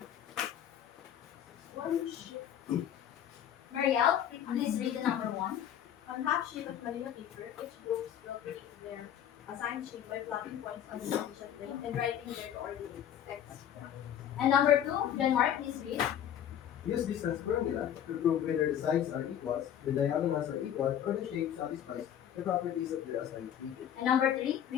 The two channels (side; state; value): right; quieter; 10.0 dB